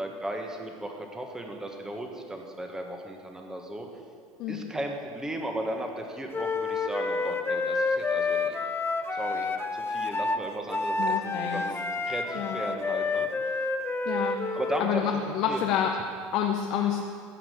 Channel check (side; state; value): right; quieter; 3.4 dB